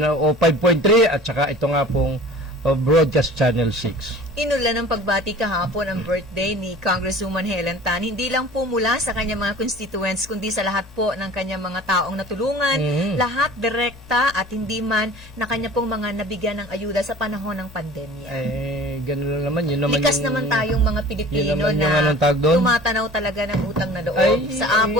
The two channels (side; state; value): both; normal; correlation 0.43